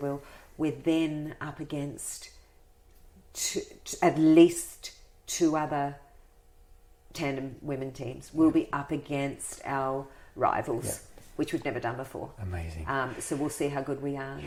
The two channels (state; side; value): identical; both; correlation 1.00